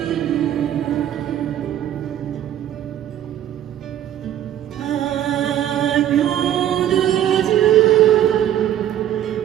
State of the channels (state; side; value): quieter; left; 11.4 dB